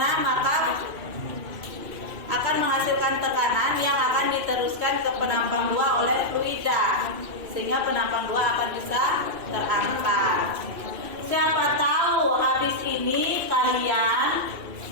maka akan menghasilkan tekanan yang akan diteruskan ke penampang 2 oleh fluida, sehingga penampang 2 akan bisa terangkat. Siapa tahu habis ini kalian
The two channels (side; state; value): left; late; 2.5 ms